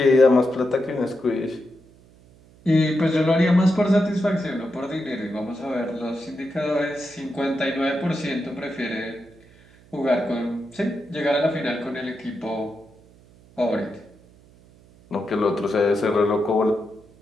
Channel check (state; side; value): noise; right; hum, 26 dB below the sound